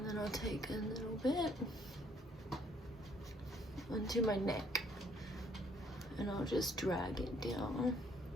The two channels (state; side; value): normal; both; correlation 0.64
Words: then I'll take a little bit onto my neck and I'll just drag it down